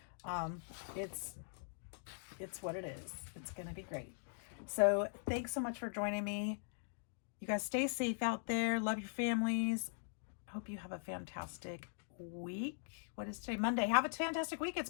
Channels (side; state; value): right; silent; digital silence